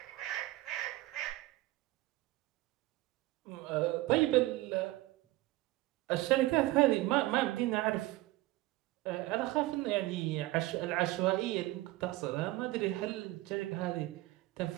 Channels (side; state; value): left; quieter; 18.5 dB